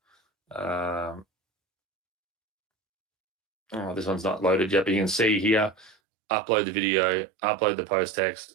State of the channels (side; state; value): left; drops out; at 6.0 s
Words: Oh, this one's not loaded yet, but you can see here, upload the video, upload the post